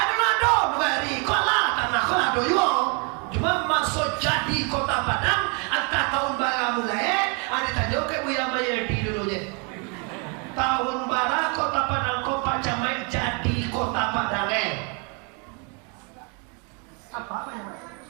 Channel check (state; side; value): quieter; left; 34.8 dB